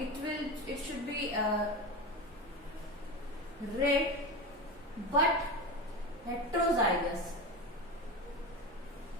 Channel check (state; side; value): normal; both; correlation 0.23